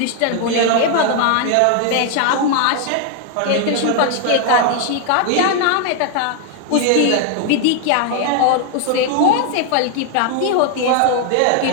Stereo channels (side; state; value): both; different; correlation 0.00